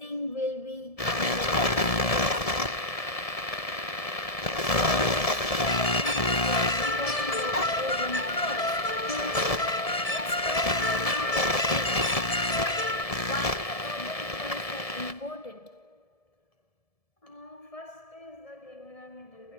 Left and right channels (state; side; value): late; right; 1.7 ms